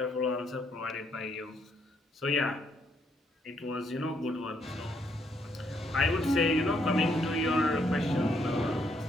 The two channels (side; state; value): both; normal; correlation 0.72